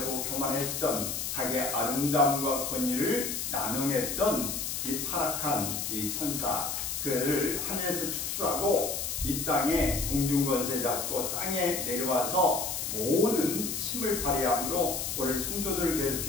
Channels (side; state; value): left; noise; hiss, 3 dB below the sound